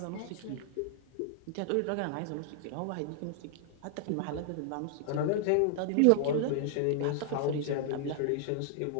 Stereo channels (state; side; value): different; both; correlation -0.01